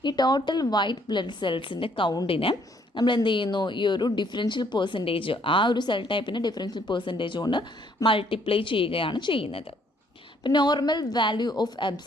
ഈ ടോട്ടൽ വൈറ്റ് ബ്ലഡ് സെൽസിൻ്റെ കൗണ്ടിനെ നമ്മൾ എന്ത് ചെയ്യുന്നു, ഈ ഒരു ഡിഫറൻഷ്യൽ പെർസെൻറ്റേജ്, ആ ഒരു സെൽ ടൈപ്പിൻ്റെ ഡിഫറൻഷ്യൽ പെർസെൻറ്റേജ് കൊണ്ട് മൾട്ടിപ്ലൈ ചെയ്യുകയാണ് ചെയ്യുന്നത്. അപ്പോൾ normal value of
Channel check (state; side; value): normal; both; correlation 0.66